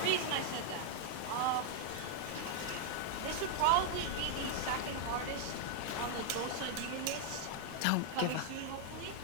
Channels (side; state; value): both; different; correlation 0.00